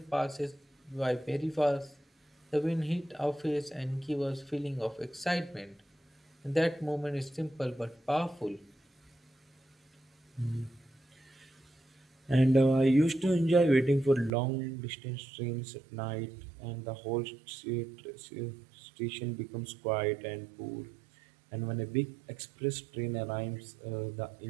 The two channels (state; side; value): drops out; left; at 14.3 s